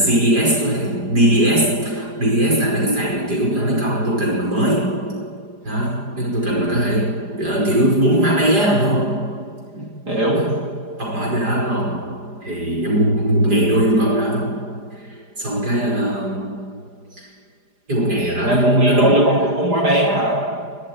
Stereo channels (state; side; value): late; left; 4.9 ms